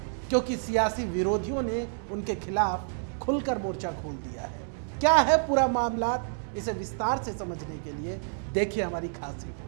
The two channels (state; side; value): silent; left; digital silence